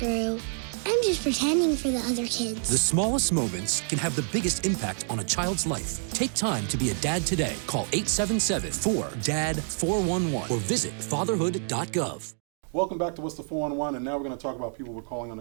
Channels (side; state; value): left; silent; 60 dB below the other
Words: I'm just pretending for the other kids. The smallest moments can have the biggest impact on a child's life. Take time to be a dad today. Call 877-4DAD-411 or visit fatherhood.gov. Welcome back to What's the 411, and now we're going to talk about people we're calling on